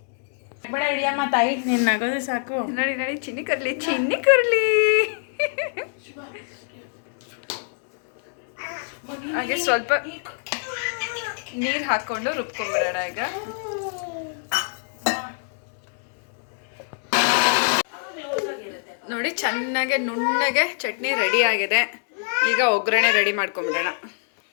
ಬೇಡ ಹಿಡಿಯಮ್ಮ ತಾಯಿ, ನೀನು ನಗೋದು ಸಾಕು. ನೋಡಿ ನೋಡಿ, ಚಿನ್ನಿ ಕರ್ಲಿ. ಹಾಗೆ ಸ್ವಲ್ಪ ನೀರು ಹಾಕ್ಕೊಂಡು ರುಬ್ಕೊಂಡ್ಬಿಡೋಣ. ಈಗ ನೋಡಿ ಚೆನ್ನಾಗೆ ನುಣ್ಣಗೆ ಚಟ್ನಿ ರೆಡಿ ಆಗಿದೆ. ಈಗ ಒಗ್ಗರಣೆ ರೆಡಿ ಮಾಡ್ಕೊಂಬಿಡೋಣ.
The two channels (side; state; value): right; silent; 62 dB below the other